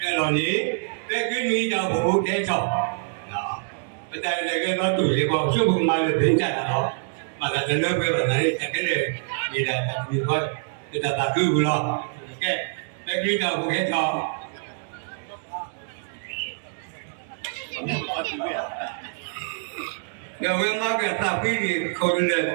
ni, kini dah buku kecoh. Betul lagi kalau tu, kalau cuba malu bencana lo, maka jenuh berani cakap ni dah tak boleh kita tak guna lo. Okay, lagi dah bukan tak. Kalau memang kita tapi ni kau ni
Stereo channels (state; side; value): silent; left; digital silence